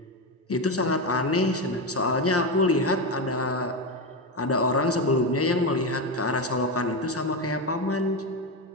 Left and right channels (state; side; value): normal; both; correlation 0.14